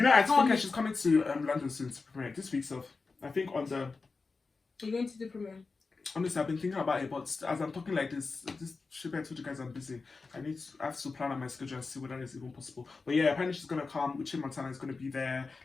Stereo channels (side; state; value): right; quieter; 4.2 dB